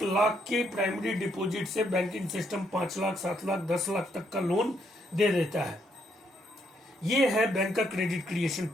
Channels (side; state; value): both; normal; correlation 0.74